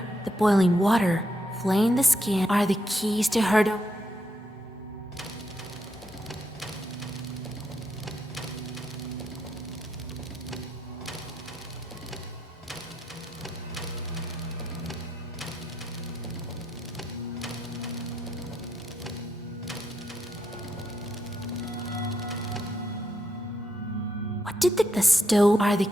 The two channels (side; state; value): both; normal; correlation 0.80